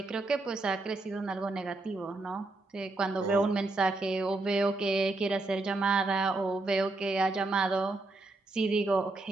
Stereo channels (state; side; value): quieter; left; 3.1 dB